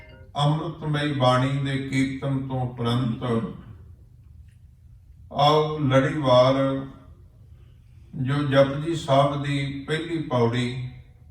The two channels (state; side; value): identical; both; correlation 1.00